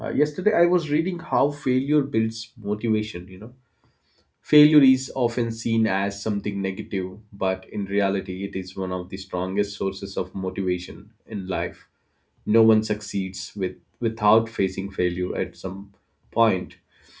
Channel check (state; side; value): identical; both; correlation 1.00